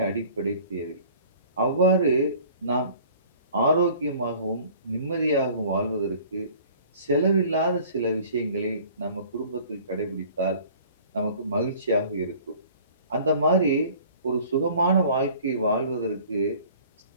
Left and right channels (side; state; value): both; inverted; correlation -0.49